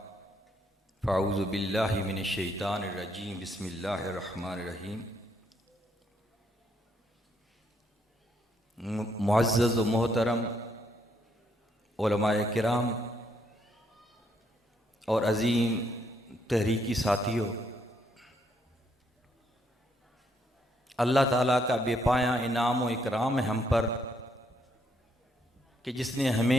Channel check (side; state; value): both; normal; correlation 0.73